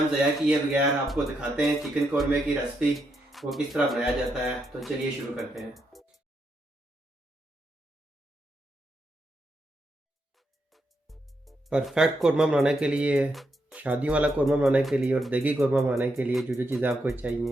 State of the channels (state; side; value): normal; both; correlation 0.81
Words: ज़ाया किए बगैर आपको दिखाते हैं चिकन कौरमे की रेसिपी, वो किस तरह बनाया जाता है। तो चलिए शुरू करते हैं। परफेक्ट कौरमा बनाने के लिए, शादी वाला कौरमा बनाने के लिए और देगी कौरमा बनाने के लिए जो जो चीज़ें आपको